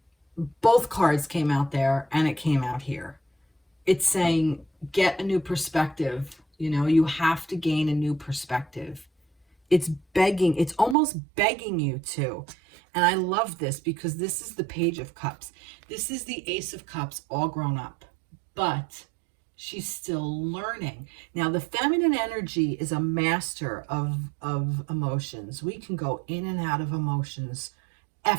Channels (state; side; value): drops out; left; at 11.0 s